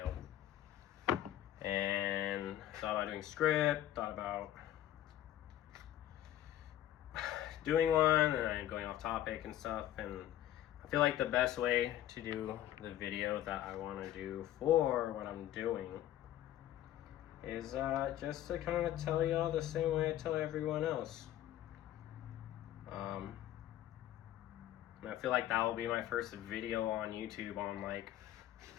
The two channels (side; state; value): right; quieter; 12.7 dB